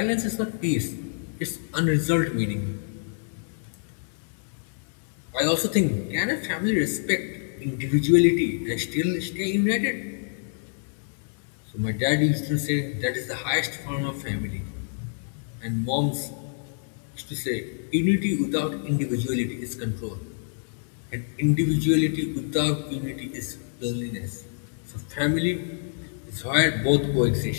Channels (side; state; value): right; silent; digital silence